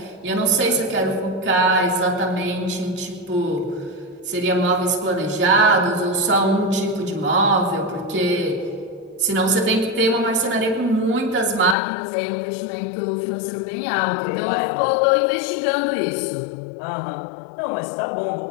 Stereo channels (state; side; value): drops out; right; at 11.8 s